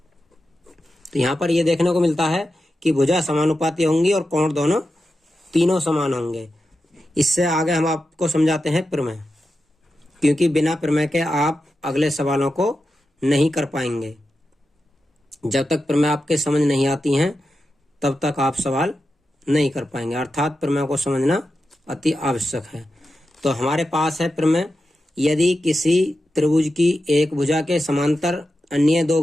तो यहाँ पर ये देखने को मिलता है कि भुजा समानुपाती होंगी और कोण तीनों समान होंगे। इससे आगे हम आपको समझाते हैं प्रमेय, क्योंकि बिना प्रमेय के आप अगले सवालों को नहीं कर पाएंगे। जब तक प्रमेय आपके समझ नहीं आती हैं तब तक आप सवाल नहीं कर पाएंगे। अर्थात प्रमेय को समझना अति आवश्यक है। तो हमारे पास है प्रमेय, यदि किसी त्रिभुज की एक भुजा के समांतर अन्य दो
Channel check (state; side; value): normal; both; correlation 0.90